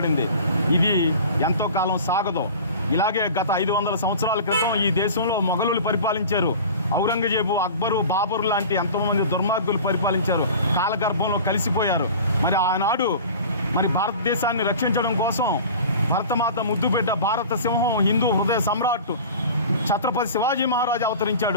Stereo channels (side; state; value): both; inverted; correlation -0.39